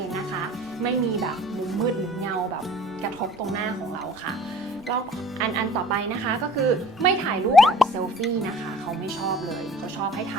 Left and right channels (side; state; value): both; normal; correlation 0.48